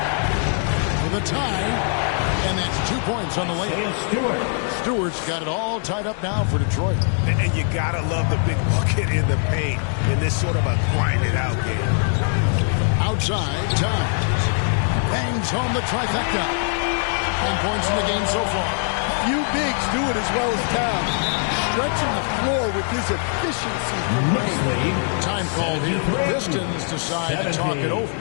For the tie, and that's 2 points on the layup. Stewart's got it all tied up now for Detroit. And you gotta love the big bucket in the paint in this sort of a grind-it-out game. Outside, Towns bangs home the trifecta. 10 points in the game so far. Few bigs do it as well as Towns. Stretching the floor with his efficiency from range. Time called here. The Pistons decide to talk it over.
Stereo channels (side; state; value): right; silent; 56 dB below the other